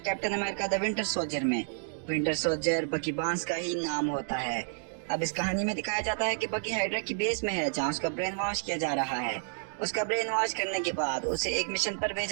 captain America the winter soldier में। विंटर सोल्जर बकी बांस का ही नाम होता है। अब इस कहानी में दिखाया जाता है कि बकी हाइड्रा की बेस में है, जहाँ उसका ब्रेन वॉश किया जा रहा है। उसका ब्रेन वॉश करने के बाद उसे एक मिशन पर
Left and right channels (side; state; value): left; silent; digital silence